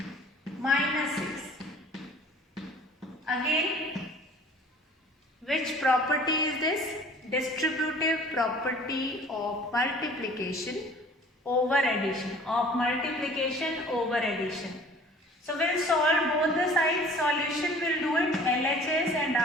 minus 6. Again, which property is this? Distributive property of multiplication over addition. So we'll solve both the sides. Solution will do it LHS and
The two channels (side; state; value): both; normal; correlation 0.49